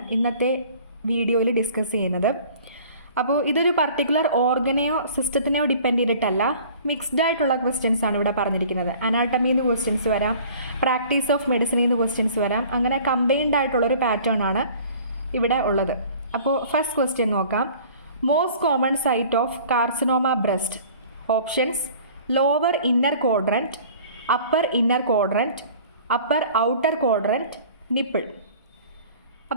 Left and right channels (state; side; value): inverted; both; correlation -0.48